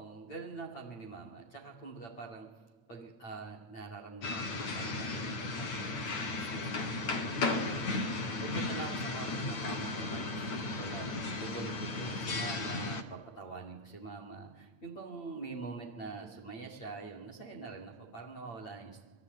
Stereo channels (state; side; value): late; right; 8.8 ms